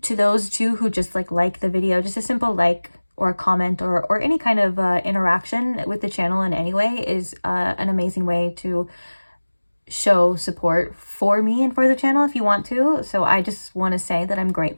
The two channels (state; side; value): inverted; both; correlation -1.00